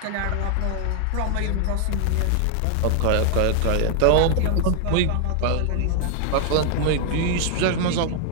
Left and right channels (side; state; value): both; different; correlation 0.00